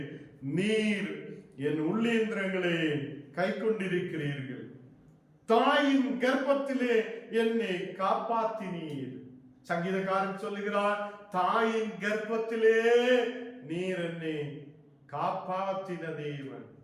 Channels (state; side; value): identical; both; correlation 1.00